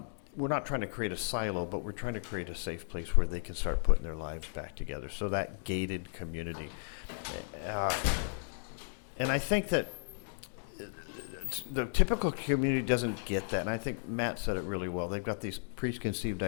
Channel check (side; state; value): right; silent; digital silence